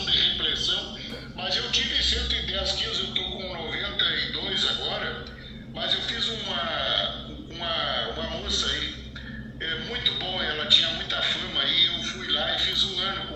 de repressão. Mas eu tive 110 quilos, eu estou com 92 agora. Mas eu fiz uma moça aí, muito boa, ela tinha muita fama aí. Eu fui lá e fiz um ano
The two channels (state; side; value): identical; both; correlation 1.00